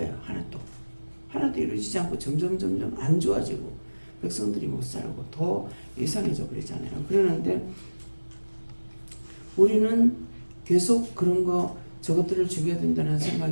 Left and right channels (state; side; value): inverted; both; correlation -1.00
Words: 하나도 이루어지지 않고 점점 안 좋아지고 백성들이 못 살고 더 이상해져 버리잖아요. 그러는데 우리는 계속 그런 거 저것들을 죽여야 된다는